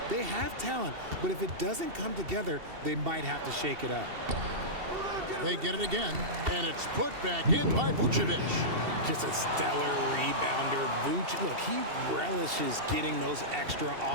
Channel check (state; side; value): late; left; 2.7 ms